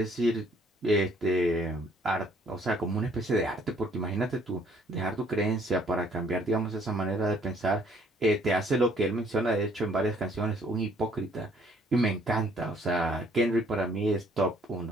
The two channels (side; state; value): both; normal; correlation 0.62